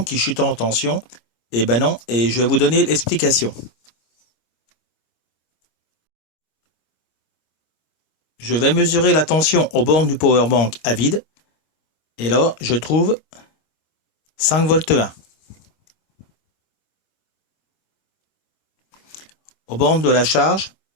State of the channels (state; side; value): late; right; 26 ms